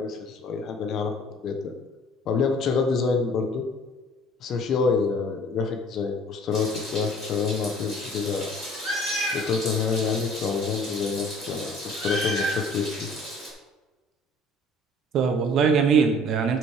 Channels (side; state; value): both; normal; correlation 0.52